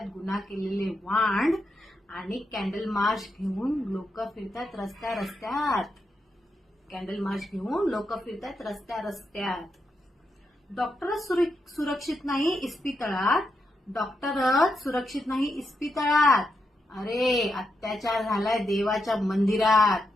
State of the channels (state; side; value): normal; both; correlation 0.84